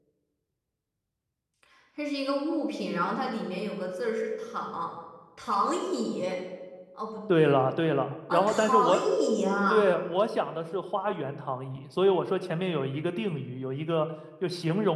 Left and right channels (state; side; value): identical; both; correlation 1.00